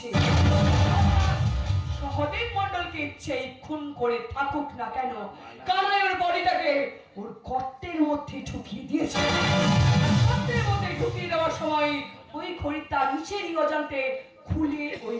সহদেব মণ্ডলকে ইচ্ছেই খুন করে থাকুক না কেন, কানাই ওর বডিটাকে ওর গর্তের মধ্যে ঢুকিয়ে দিয়েছে। গর্তের মধ্যে ঢুকিয়ে দেওয়ার সময় ওই ঘড়িটা নিচেরই অজান্তে খুলে ওই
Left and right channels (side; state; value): both; identical; correlation 1.00